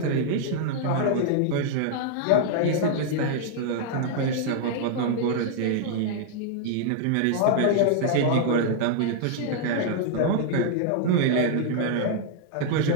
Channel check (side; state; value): both; different; correlation -0.01